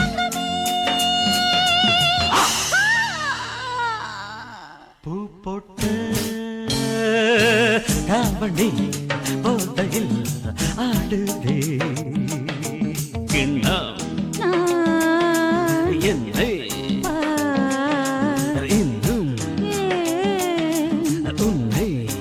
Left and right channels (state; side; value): identical; both; correlation 1.00